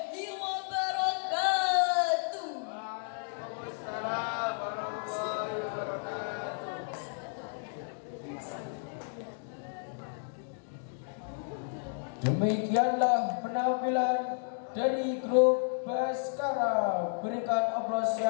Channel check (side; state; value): right; silent; digital silence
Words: wabarakatuh. Waalaikumsalam warahmatullahi wabarakatuh. Demikianlah penampilan dari grup Baskara. Berikan aplaus